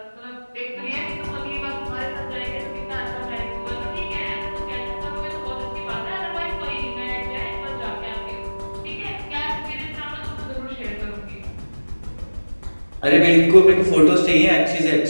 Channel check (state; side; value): inverted; both; correlation -1.00